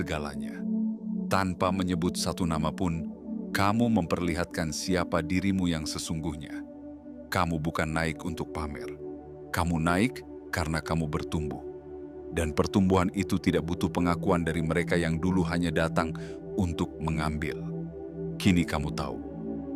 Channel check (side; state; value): both; identical; correlation 1.00